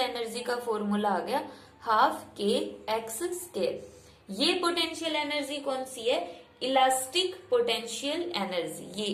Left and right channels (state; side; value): identical; both; correlation 1.00